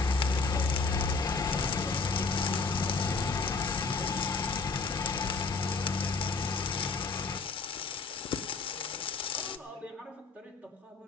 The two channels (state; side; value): quieter; right; 4.4 dB